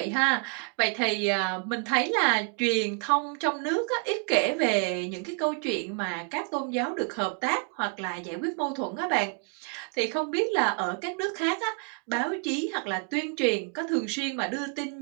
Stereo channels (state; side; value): quieter; left; 36.9 dB